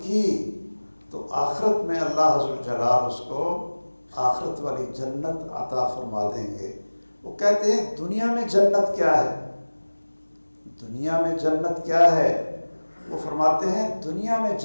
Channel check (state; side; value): inverted; both; correlation -1.00